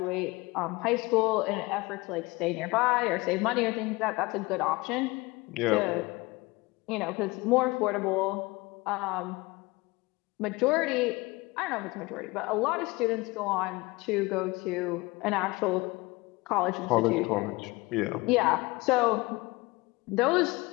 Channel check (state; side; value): quieter; right; 23.0 dB